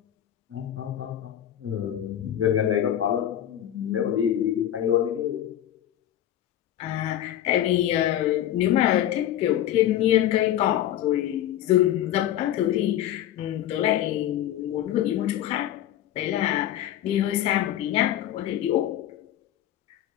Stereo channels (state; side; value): quieter; right; 11.9 dB